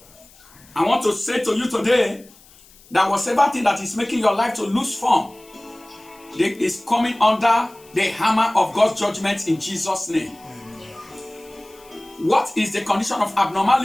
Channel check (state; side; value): noise; left; hiss, 26 dB below the sound